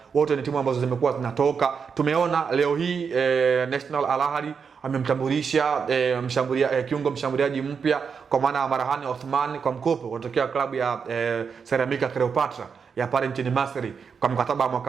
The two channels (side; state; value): left; quieter; 6.1 dB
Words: wote ni timu ambazo zimekuwa zinatoka. Tumeona leo hii National Al Ahly amemtambulisha kiungo mshambuliaji mpya kwa maana ya Marhani Othman kwa mkopo kutokea klabu ya Ceramica Cleopatra ya pale nchini Misri kwa mkataba wa